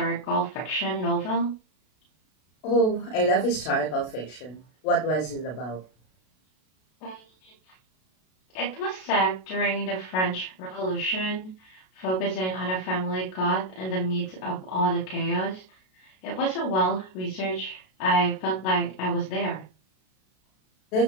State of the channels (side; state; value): right; late; 32 ms